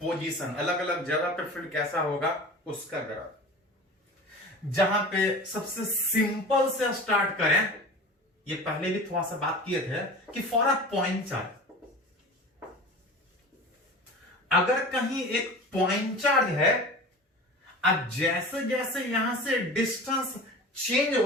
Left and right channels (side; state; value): both; normal; correlation 0.36